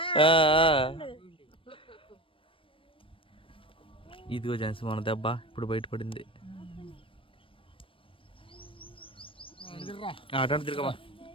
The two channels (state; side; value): late; right; 0.25 ms